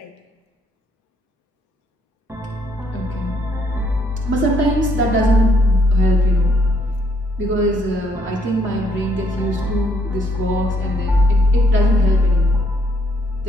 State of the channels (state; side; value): normal; both; correlation 0.70